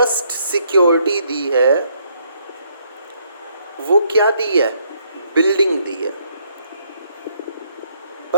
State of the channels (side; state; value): both; inverted; correlation -0.69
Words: सिक्योरिटी दी है वो क्या दी है? बिल्डिंग दी है।